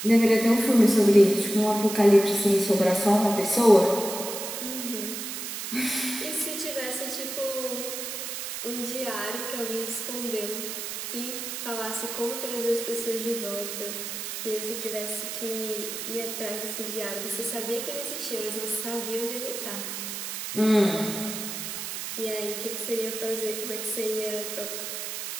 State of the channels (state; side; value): noise; right; hiss, 6 dB below the sound